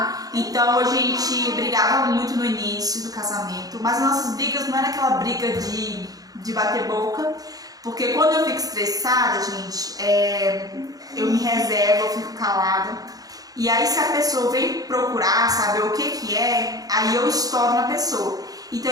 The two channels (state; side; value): late; left; 0.18 ms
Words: Então a gente brigava muito no início do casamento, mas as nossas brigas não era aquela briga de bater boca. Porque quando eu fico estressada, gente, eu me reservo, eu fico calada. E aí se a pessoa vem procurar saber o que é, aí eu estouro na pessoa. Então